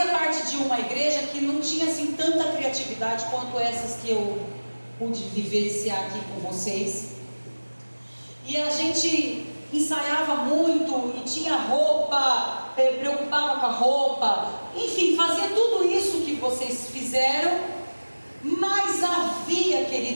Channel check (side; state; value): both; inverted; correlation -1.00